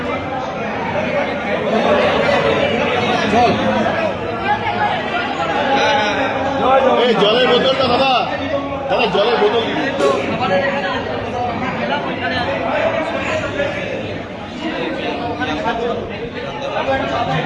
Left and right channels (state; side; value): identical; both; correlation 1.00